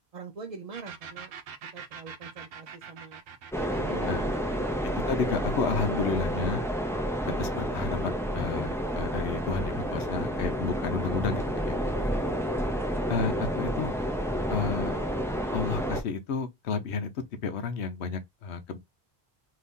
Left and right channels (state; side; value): normal; both; correlation 0.40